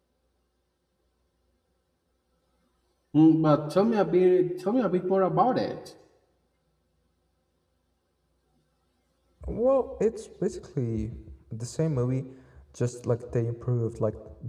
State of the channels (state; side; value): identical; both; correlation 1.00